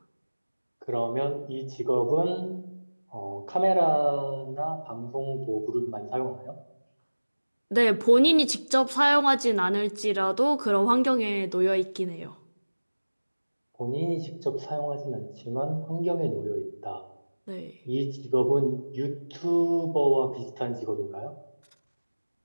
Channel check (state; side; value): inverted; both; correlation -1.00